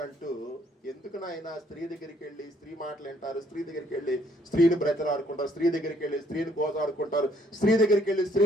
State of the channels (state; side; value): normal; both; correlation 0.66